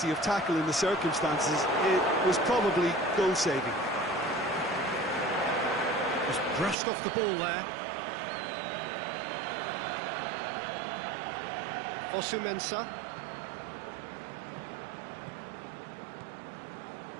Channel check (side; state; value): left; drops out; at 6.8 s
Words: of tackle in the circumstances. It was probably goal-saving. Just brushed off the ball there. Fosu-Mensah.